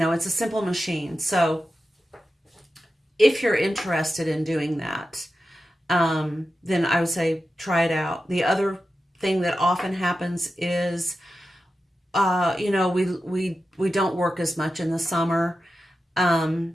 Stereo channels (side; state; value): both; normal; correlation 0.92